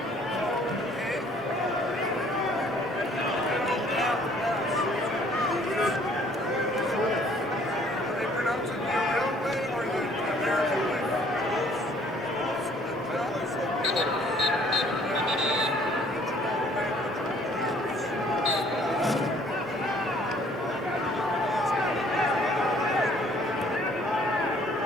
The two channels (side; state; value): both; normal; correlation 0.59